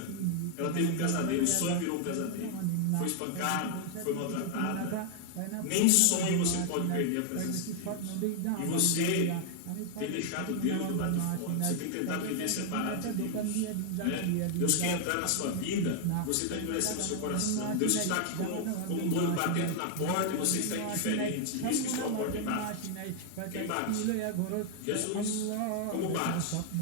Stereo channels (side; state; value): both; different; correlation 0.00